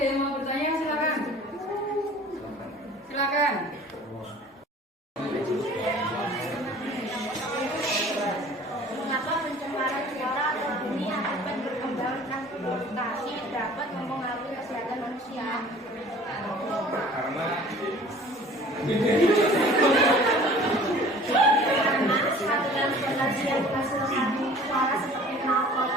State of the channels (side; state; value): both; normal; correlation 0.48